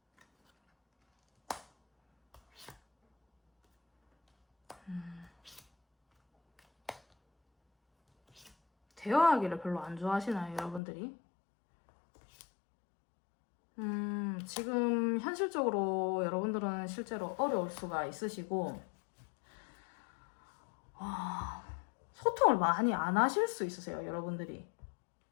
대화하기를 별로 안 좋아하시나요, 여러분들이? 지금 현실적으로 여러분들은 실제로 어려울 수가 있으시고, 소통을 많이 안 하실 수 있으세요, 여러분들이.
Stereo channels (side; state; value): right; drops out; at 10.8 s